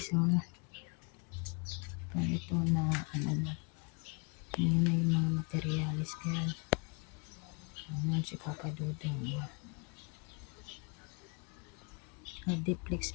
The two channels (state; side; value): quieter; right; 33.8 dB